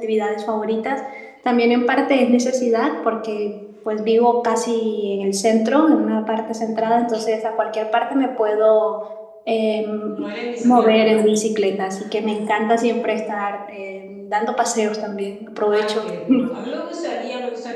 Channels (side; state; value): both; identical; correlation 1.00